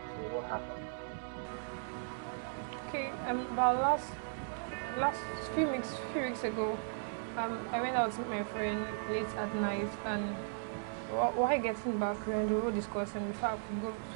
So what happened? Okay, about last few weeks ago, I went out with my friend late at night, and while getting back, we were discussing before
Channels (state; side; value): silent; left; 53 dB below the other